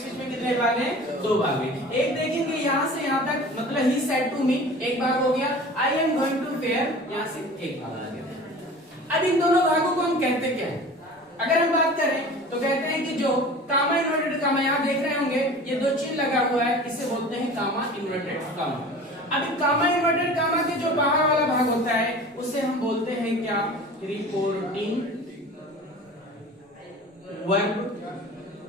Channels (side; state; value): both; normal; correlation 0.40